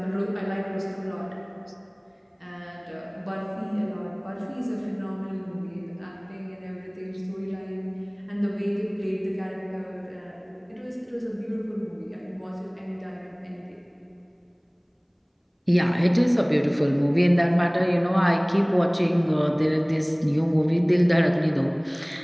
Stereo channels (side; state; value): both; identical; correlation 1.00